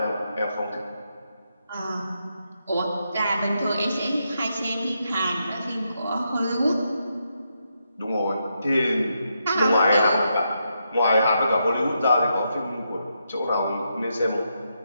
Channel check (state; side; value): inverted; both; correlation -0.82